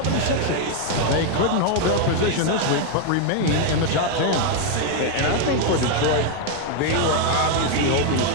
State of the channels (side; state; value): both; different; correlation 0.00